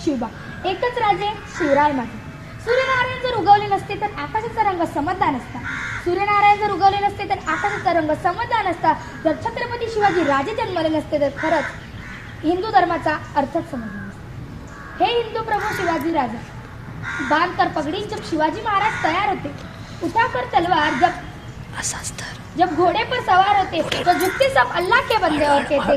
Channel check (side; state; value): both; identical; correlation 1.00